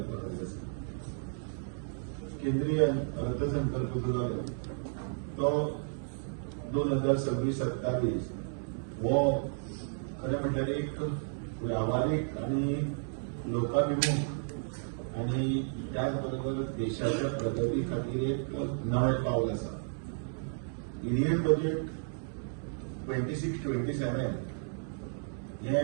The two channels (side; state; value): left; silent; digital silence